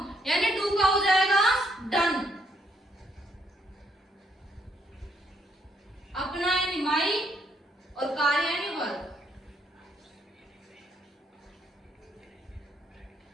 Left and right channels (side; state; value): both; normal; correlation 0.73